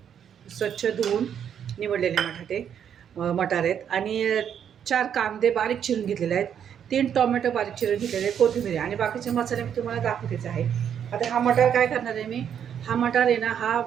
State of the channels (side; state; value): left; quieter; 8.6 dB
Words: स्वच्छ धुवून निवडलेले मटार आहेत आणि 4 कांदे बारीक चिरून घेतलेले आहेत. 3 टोमॅटो बारीक चिरून घेतलेले आहेत, कोथिंबीर आणि बाकीचे मसाले मी तुम्हाला दाखवतेच आहे. आता हा मटार काय करणार आहे मी, हा मटार आहे ना, हा